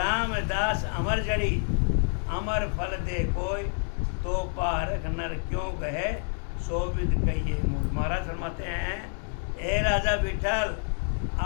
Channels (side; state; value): right; silent; 57 dB below the other